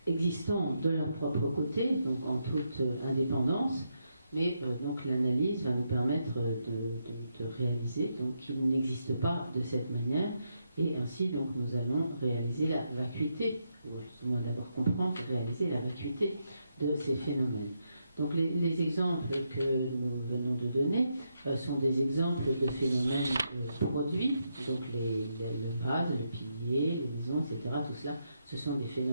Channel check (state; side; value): inverted; both; correlation -0.81